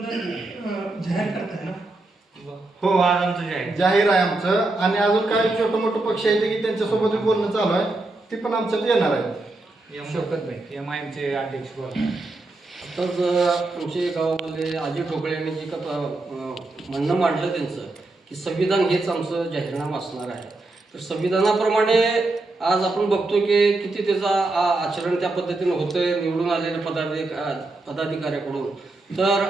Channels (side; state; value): left; quieter; 3.0 dB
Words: जाहीर करताय ना? हो, आज आमचं जाहीर आहे आमचं. आणि अजून काही छोटं मोठं पक्ष आहेत की त्यांच्यासोबत बोलणं चालू आहे, ती पण आमच्यात येणार आहे. MIMचे अध्यक्ष बोला. तर आमच्या गावामध्ये अजय ठोकळे यांनी जे का म्हणणं मांडलं त्यांचं की संविधान हेच आमचं जाहीरनामा असणार आहे. तर संविधानाप्रमाणे आज आपण बघतो की किती त्याचा आचरण त्या पद्धतीनं होतंय निवडून आलेल्या पदाधिकाऱ्याकडून. तर